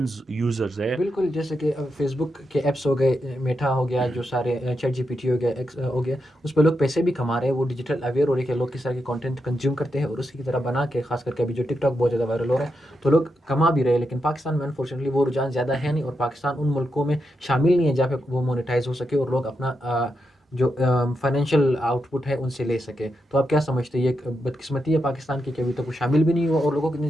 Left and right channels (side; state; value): both; normal; correlation 0.85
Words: یوزرز ہے۔ بالکل، جیسے کہ فیس بک کے ایپس ہو گئے، میٹا ہو گیا، جو سارے چیٹ جی پی ٹی ہو گیا، ایکس ہو گیا، اس پہ لوگ پیسے بھی کما رہے ہیں۔ وہ ڈیجیٹل اویئر ہو رہے ہیں کہ لوگ کس طرح کے کانٹینٹ کنزیوم کرتے ہیں اور اسی کی طرح بنا کے، خاص کر کے ابھی جو ٹک ٹاک بہت زیادہ وائرل ہو رہا ہے، تو لوگ کما بھی رہے ہیں۔ لیکن پاکستان میں انفارچونیٹلی وہ رجحان زیادہ ہے نہیں، اور پاکستان ان ملکوں میں شامل نہیں ہے جہاں پہ وہ مونیٹائز ہو سکے اور لوگ اپنا جو فائنینشیل آؤٹ پٹ ہے ان سے لے سکے۔ تو آپ کیا سمجھتے ہیں، یہ ایک بدقسمتی ہے پاکستان کی کہ ابھی تک وہ شامل بھی نہیں ہوا اور لوگوں کی اتنی